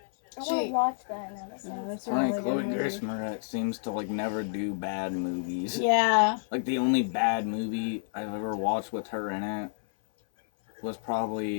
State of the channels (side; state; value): right; silent; 58 dB below the other